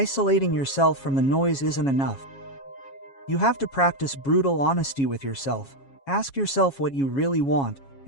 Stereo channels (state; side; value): late; right; 7.3 ms